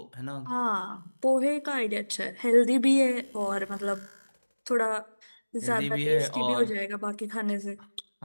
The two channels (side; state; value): both; inverted; correlation -1.00